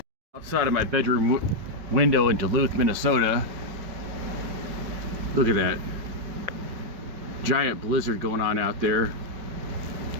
Outside of my bedroom window in Duluth, Minnesota. Look at that. Giant blizzard going on out there.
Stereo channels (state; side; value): late; left; 5.4 ms